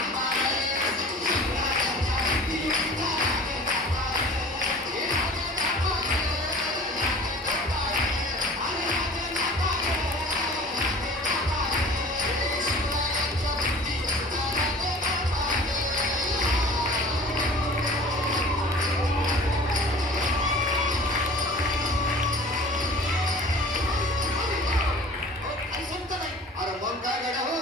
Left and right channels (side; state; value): both; normal; correlation 0.43